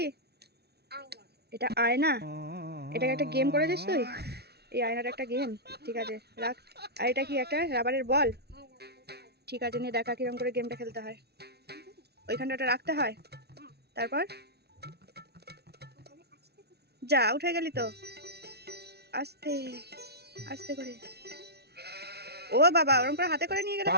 আয়না। এটা আয়না? এটাকে একটা গেম করে দিস তুই? এই আয়নাটা একটা গেম? ঠিক আছে রাখ। আর এটা কি একটা রাবারের বল? হ্যাঁ, রাবার। ঠিক আছে নিয়ে দেখা কিরম করে গেমটা খেলতে হয়। ওইখানটা ওটা রাখতে হয়, হ্যাঁ, তারপর ওখানে আসতে হবে। যা উঠে গেলি তো। আস্তে আস্তে করে। ও বাবা, ওরকম করে হাতে করে নিয়ে গেলে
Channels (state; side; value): late; left; 0.48 ms